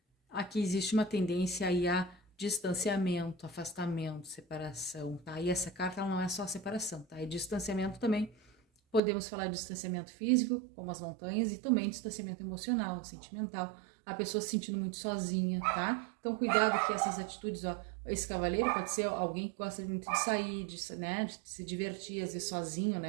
Aqui existe uma tendência aí a distanciamento, afastamento, separação, tá? E essa carta ela não é só separação, tá? É distanciamento também. Podemos falar de distanciamento físico, como as montanhas, e também distanciamento emocional, sentimental. A pessoa se sentindo muito sozinha, tá? Então, cuidado que essas atitudes, ó, esse cavaleiro pode ser alguém que gosta muito de sair, né, de se divertir, às vezes sozinho,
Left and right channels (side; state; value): left; drops out; at 9.0 s